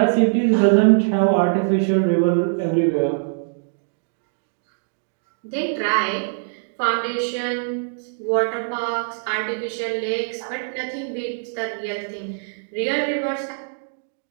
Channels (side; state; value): left; silent; digital silence